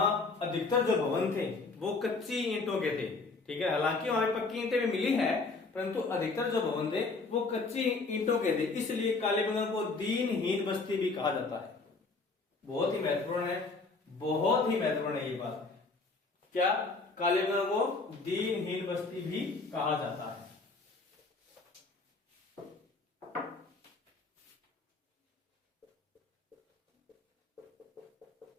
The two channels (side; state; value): right; quieter; 3.9 dB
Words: अधिकतर जो भवन थे वो कच्ची ईंटों के थे। ठीक है, हालांकि वहां पक्की ईंटें भी मिली है, परंतु अधिकतर जो भवन थे वो कच्ची ईंटों के थे, इसलिए कालीबंगा को दीनहीन बस्ती भी कहा जाता है। बहुत ही महत्वपूर्ण है, बहुत ही महत्वपूर्ण है ये बात। क्या, कालीबंगा को दीनहीन बस्ती भी कहा जाता है।